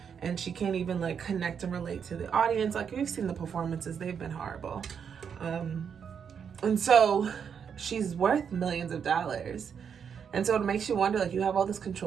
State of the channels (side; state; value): left; quieter; 7.2 dB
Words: and she can't even like connect and relate to the audience. Like, we've seen the performances, they've been horrible. And so she's worth millions of dollars. And so it makes you wonder, like, you have all this